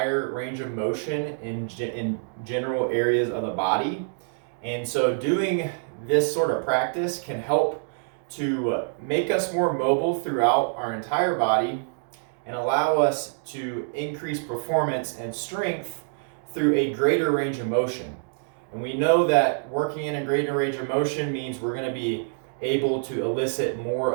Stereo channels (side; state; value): left; silent; digital silence